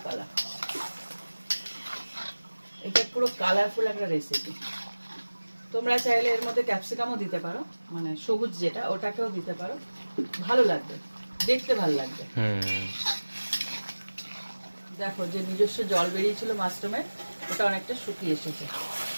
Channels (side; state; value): both; inverted; correlation -1.00